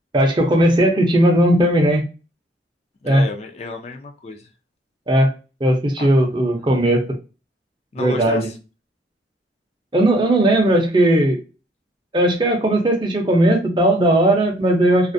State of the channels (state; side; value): normal; both; correlation 0.63